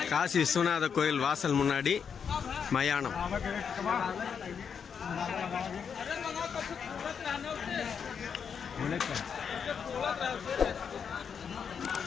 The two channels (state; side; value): quieter; right; 6.9 dB